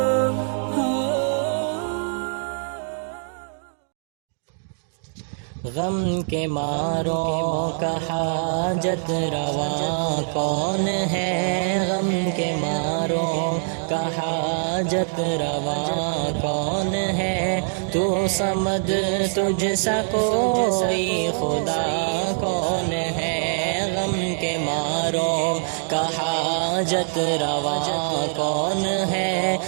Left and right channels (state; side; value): silent; left; digital silence